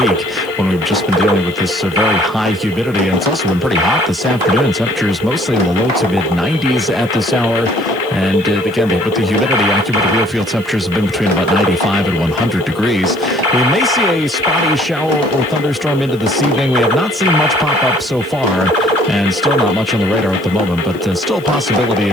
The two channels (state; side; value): noise; left; hiss, 25 dB below the sound